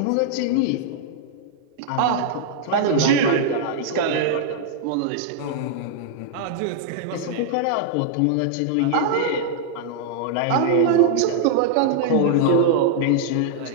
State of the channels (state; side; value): different; both; correlation -0.01